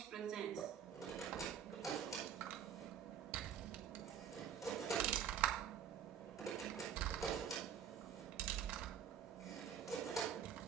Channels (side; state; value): left; quieter; 8.6 dB